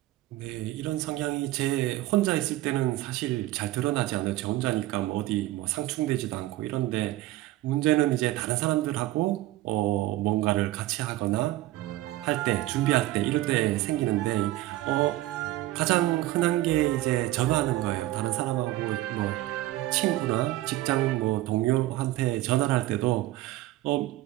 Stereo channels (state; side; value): quieter; left; 16.4 dB